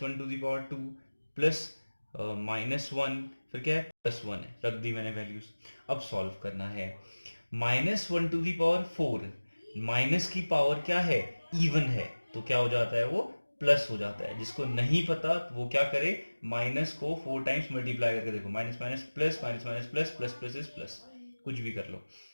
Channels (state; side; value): inverted; both; correlation -1.00